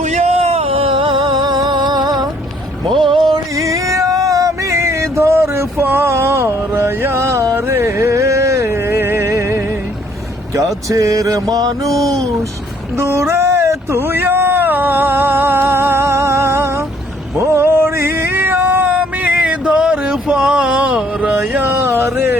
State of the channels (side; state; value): both; normal; correlation 0.64